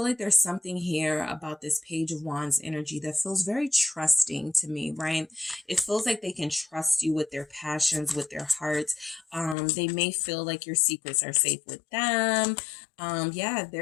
like there's something here about this Page of Wands energy that feels very trusting to me, right? It feels like they can trust you with their passions, with their hearts. They may feel like your secrets are safe with them. Yeah,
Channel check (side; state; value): right; drops out; at 9.6 s